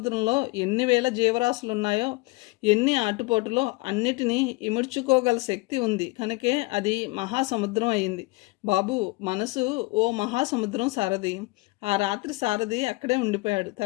ఎన్ని వేల జీవరాశులున్నాయో, ఎన్ని ఆటుపోటులో అన్నిటినీ ఇముడ్చుకోగల శక్తి ఉంది కనుకే అది మహాసముద్రం అయింది బాబు. మనసు ఓ మహాసముద్రం సారథి. ఆ రాత్రి సారథి అక్కడే ఉండిపోయాడు.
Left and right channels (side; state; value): right; quieter; 23.8 dB